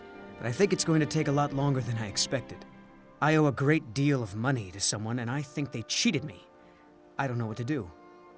But I think it's going to take a lot longer than I expected. I owe a great deal of money to someone, and I think they cheated me. I don't know what to do.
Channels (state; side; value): identical; both; correlation 1.00